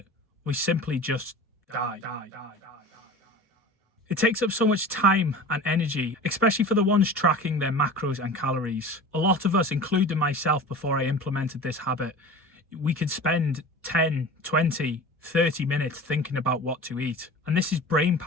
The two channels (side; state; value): both; normal; correlation 0.38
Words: We simply just die. It takes up so much time and energy, especially for the ones tracking their macros and calories. A lot of us, including myself before I implemented this habit, we could spend 10, 20, 30 minutes thinking about what to eat. And this is brain